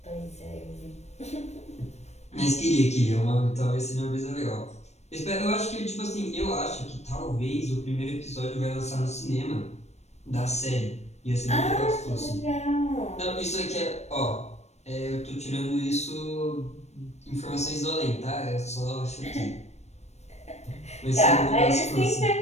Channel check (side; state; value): right; late; 0.32 ms